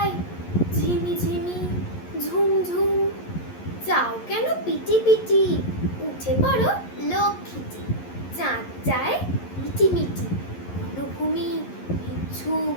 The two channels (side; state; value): right; late; 11 ms